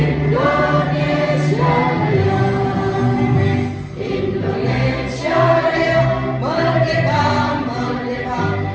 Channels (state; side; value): identical; both; correlation 1.00